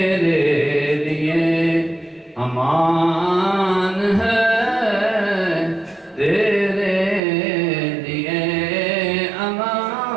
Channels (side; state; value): left; drops out; at 7.2 s